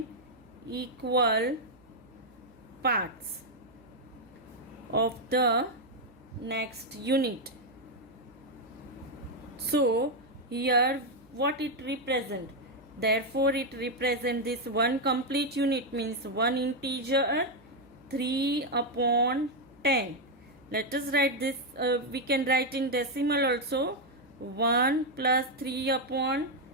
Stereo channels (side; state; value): right; noise; hum, 29 dB below the sound